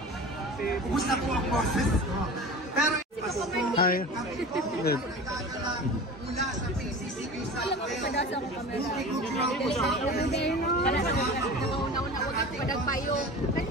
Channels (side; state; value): both; normal; correlation 0.35